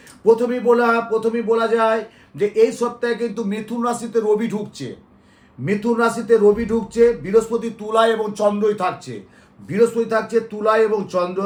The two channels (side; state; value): both; identical; correlation 1.00